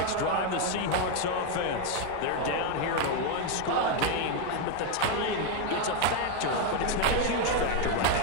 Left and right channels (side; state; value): both; different; correlation 0.01